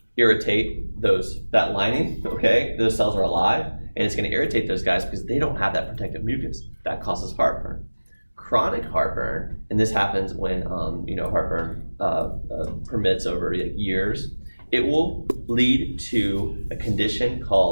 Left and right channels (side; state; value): both; inverted; correlation -1.00